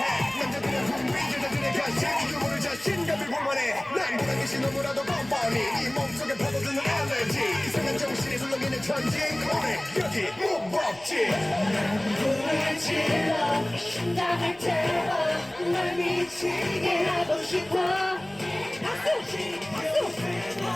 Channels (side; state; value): left; noise; rumble, 28 dB below the sound